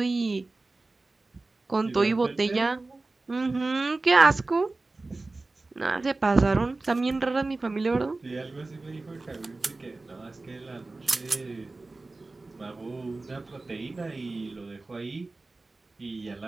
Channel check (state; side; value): quieter; left; 3.3 dB